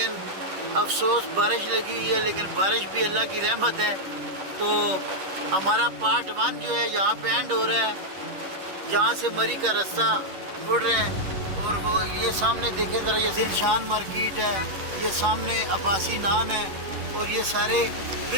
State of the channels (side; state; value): left; late; 10 ms